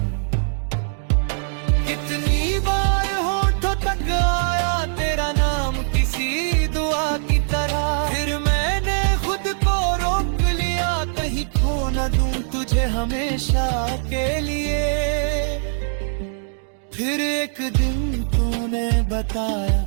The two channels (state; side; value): silent; left; digital silence